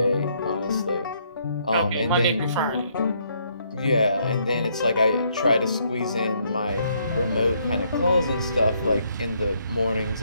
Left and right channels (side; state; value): both; inverted; correlation -0.70